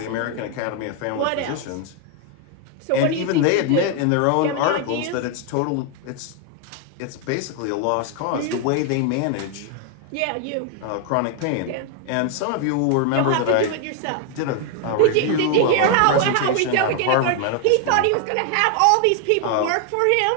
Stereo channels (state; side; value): different; both; correlation 0.01